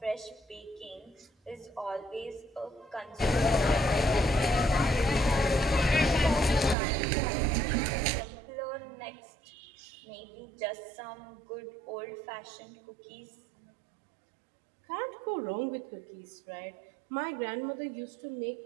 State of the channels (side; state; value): left; drops out; at 6.8 s